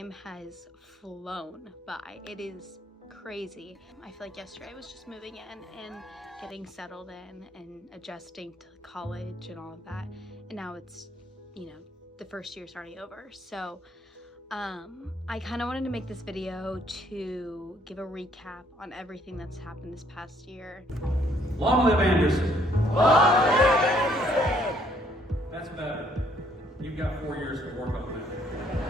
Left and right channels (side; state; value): both; normal; correlation 0.66